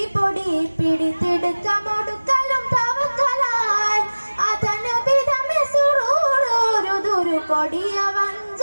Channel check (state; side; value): inverted; both; correlation -1.00